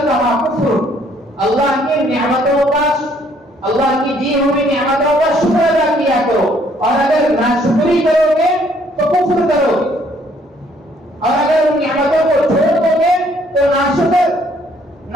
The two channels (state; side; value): normal; both; correlation 0.64